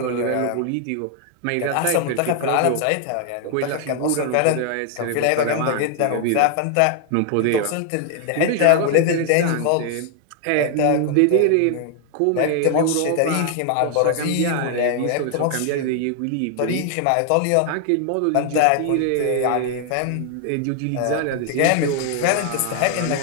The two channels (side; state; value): both; different; correlation 0.00